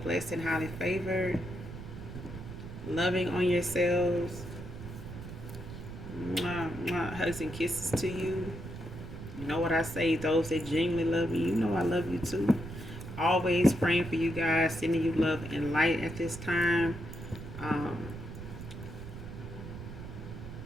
blessed, and highly favored. Loving on yourselves. Mwah, mwah, hugs and kisses to you. You know what I say, those that genuinely love me, you know I love you too. Always praying for you guys, sending you love and light at this time.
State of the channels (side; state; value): right; noise; rumble, 10 dB below the sound